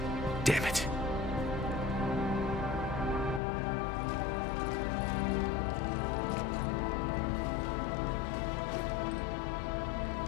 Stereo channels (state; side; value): drops out; right; at 3.4 s